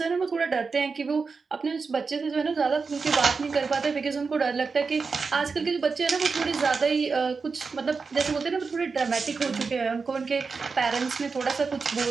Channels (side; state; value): left; quieter; 4.8 dB